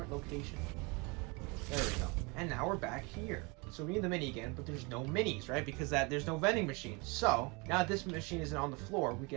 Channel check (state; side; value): quieter; left; 28.6 dB